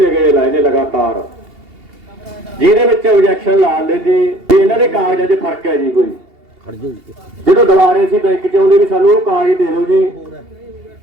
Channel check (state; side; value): late; left; 2.8 ms